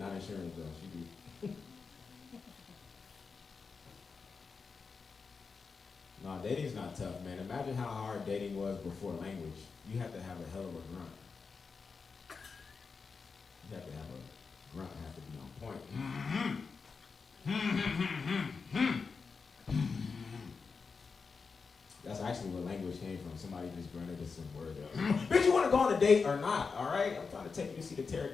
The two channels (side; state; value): right; quieter; 5.0 dB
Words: insurance though. She do. Nah, dating's not tough, man. Imagine how hard dating was before language. You have to have a hell of a grunt. You have to have a grunt. Have to be on point. That's actually where language came from. Somebody just grunted us some word. Bitch, you want to go on a date or not? All right, I'm trying to take you to see the